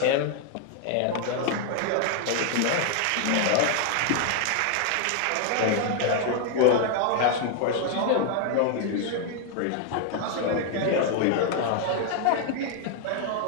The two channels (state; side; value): different; both; correlation 0.00